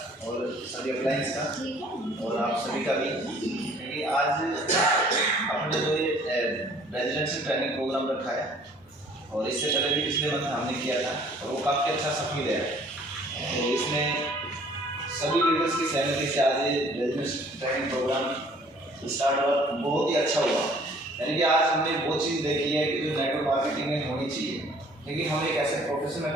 और सभी अप्लायंस का और आप सभी का भी, क्योंकि आज अपने जो ये रेजिडेंशियल ट्रेनिंग प्रोग्राम रखा है और इससे पहले भी पिछले मंथ हमने किया था और वो काफ़ी अच्छा सफल है। तो इसमें सभी लीडर्स की सहमति से आज ये रेजिडेंशियल ट्रेनिंग प्रोग्राम स्टार्ट हुआ, बहुत ही अच्छा हुआ। यानी कि आज हमने वो चीज़ देखी है कि जो नेटवर्क मार्केटिंग में होनी चाहिए, क्योंकि हम एक ऐसे प्रोफेशन में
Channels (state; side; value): normal; both; correlation 0.56